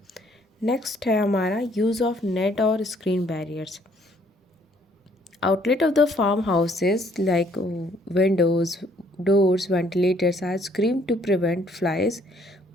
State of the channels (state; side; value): normal; both; correlation 0.64